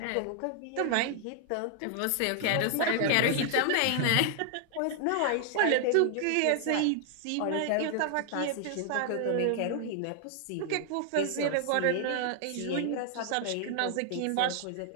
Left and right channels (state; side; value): different; both; correlation 0.00